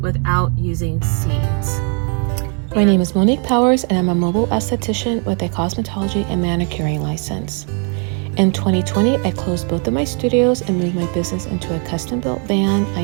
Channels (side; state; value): left; quieter; 39.3 dB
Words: without using seeds. My name is Monique Powers and I'm a mobile esthetician with a cosmetology and manicuring license. In 2020, I closed both of my studios and moved my business into a custom-built van